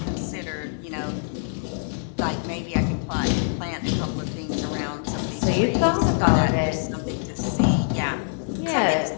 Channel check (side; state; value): right; silent; digital silence